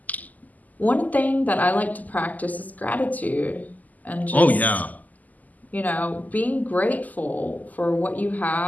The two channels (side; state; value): right; late; 0.080 ms